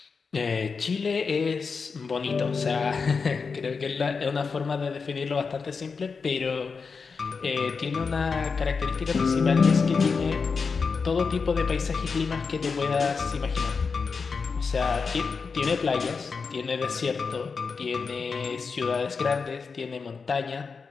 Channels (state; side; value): quieter; right; 5.1 dB